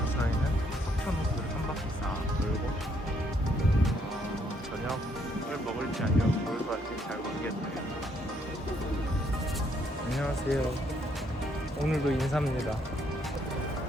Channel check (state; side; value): normal; both; correlation 0.70